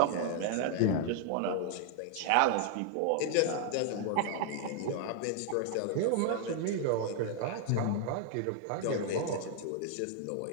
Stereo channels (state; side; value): different; both; correlation 0.00